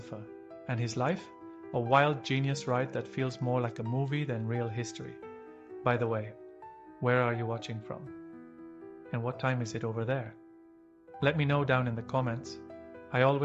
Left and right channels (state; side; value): identical; both; correlation 1.00